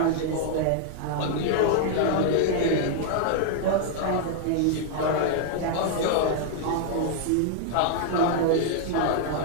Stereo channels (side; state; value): both; different; correlation -0.01